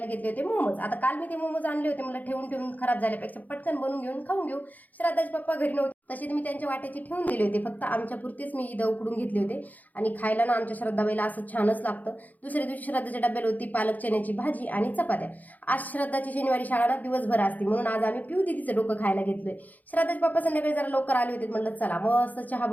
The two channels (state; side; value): late; right; 0.080 ms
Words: घेतले होते मोमोज. आता काल मी ते मोमोज आणले होते. मला ठेवून ठेवून खराब झाल्यापेक्षा पटकन बनवून घेऊन खाऊन घेऊ. श्राद्धाचे पप्पा घरी नव्हते. तसे मी त्यांच्या वाट्याचे ठेवून दिले होते. फक्त आमच्यापुरतेच मी इथं उकडून घेतले होते आणि खायला ना आमच्या श्रद्धाबाईला असं छानच लागतं. दुसऱ्या दिवशी श्रद्धाच्या डब्याला होती पालक चण्याची भाजी आणि चपात्या. आज श्रद्धाची शनिवारी शाळा ना दिवसभर असते म्हणून आज आम्ही पिऊ दिदीचं डोकं खायला घेतलोय. श्रद्धाचे पप्पा संध्याकाळी जरा लवकर आले होते. म्हणलं चला मस्त चहा